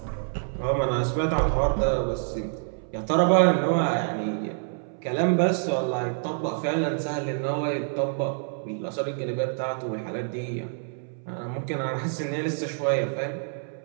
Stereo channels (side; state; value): left; silent; 60 dB below the other